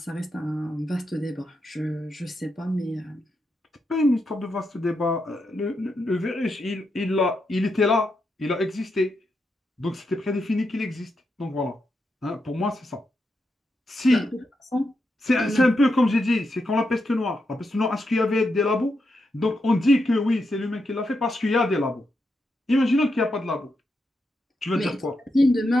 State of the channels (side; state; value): both; normal; correlation 0.84